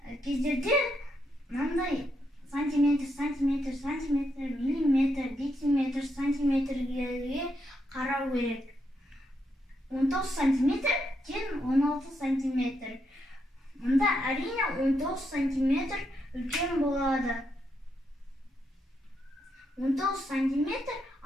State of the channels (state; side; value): normal; both; correlation 0.80